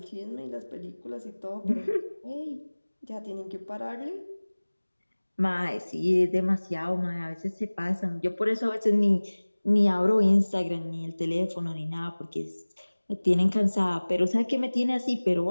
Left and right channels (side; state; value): both; inverted; correlation -1.00